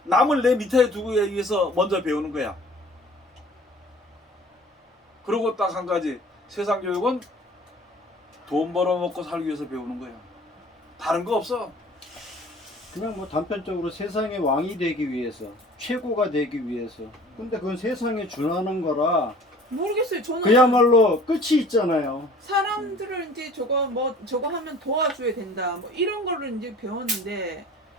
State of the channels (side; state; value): both; normal; correlation 0.48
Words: 남을 내 밑에 두기 위해서 먼저 배우는 거야. 그리고 딱 한 가지, 세상 교육은 돈 벌어먹고 살기 위해서 배우는 거야. 다른 거 없어. 그냥 뭐 단편적으로 세상의 왕이 되기 위해서, 최고가 되기 위해서. 근데 그건 세상에 준하는 거라 모르겠어요. 저는 그야말로 끝이 있잖아요. 사람들을 이제 저거 하면 도와줘야 된다. 뭐 이런 거를 이제 배웠는데